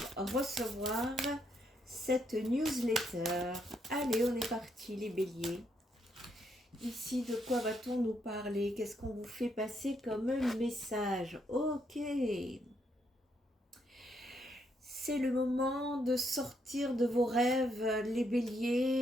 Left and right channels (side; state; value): both; normal; correlation 0.76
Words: recevoir cette newsletter. Allez, on est parti les béliers. Ici, de quoi va-t-on nous parler? Qu'est-ce qu'on vous fait passer comme message? Ok. C'est le moment de sortir de vos rêves, les